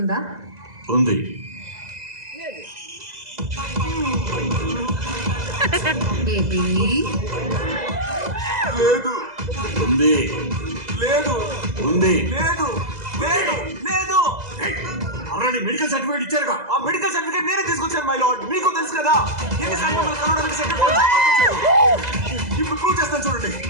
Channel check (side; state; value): left; late; 2.0 ms